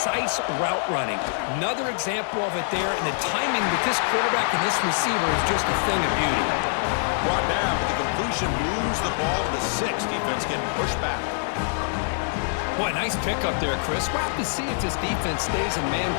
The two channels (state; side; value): silent; right; 60 dB below the other